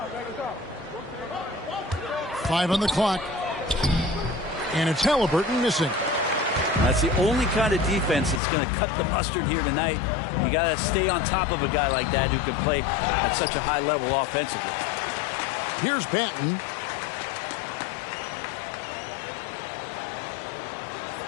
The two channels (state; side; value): drops out; right; at 8.4 s